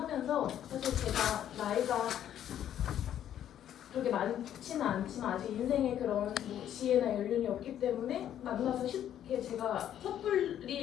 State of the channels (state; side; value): quieter; right; 10.6 dB